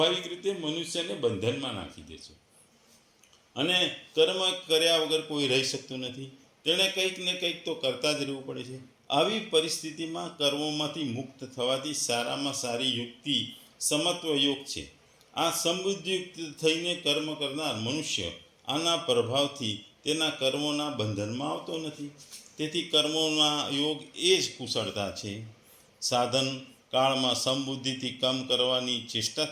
રીતે મનુષ્યને બંધનમાં નાખી દે છે, અને કર્મ કર્યા વગર કોઈ રહી શકતું નથી. તેણે કંઈક ને કંઈક તો કરતા જ રહેવું પડે છે. આવી પરિસ્થિતિમાં કર્મોમાંથી મુક્ત થવાથી સારામાં સારી યુક્તિ સમત્વ યોગ છે. આ સમબુદ્ધિયુક્ત થઈને કર્મ કરનાર મનુષ્ય આના પ્રભાવથી તેના કર્મોના બંધનમાં આવતો નથી. તેથી કર્મોના યોગ એ જ કુશળતા છે. સાધન કાળમાં સમબુદ્ધિથી કામ કરવાની ચેષ્ટા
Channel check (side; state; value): both; identical; correlation 1.00